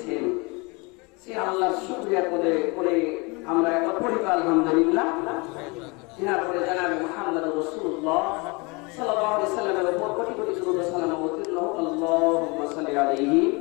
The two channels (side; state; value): right; quieter; 28.2 dB